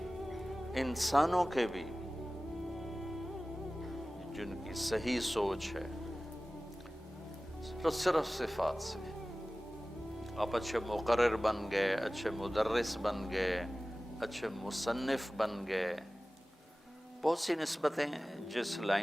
انسانوں کے بھی جن کی صحیح سوچ ہے، صرف صفات سے۔ آپ اچھے مقرر بن گئے، اچھے مدرس بن گئے، اچھے مصنف بن گئے، بہت سی نسبتیں جس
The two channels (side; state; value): both; normal; correlation 0.97